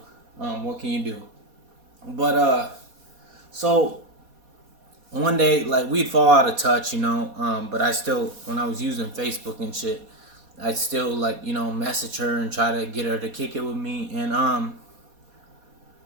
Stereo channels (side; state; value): left; late; 4.2 ms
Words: what can you do? But so one day, like, we'd fall out of touch, but I still, when I was using Facebook and shit, I'd still, like, message her and try to get her to kick it with me. And